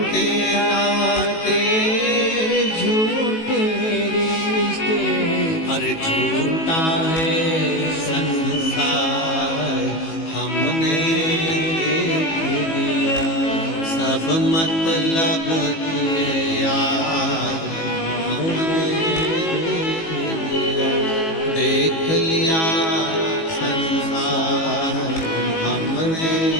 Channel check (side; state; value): right; late; 18 ms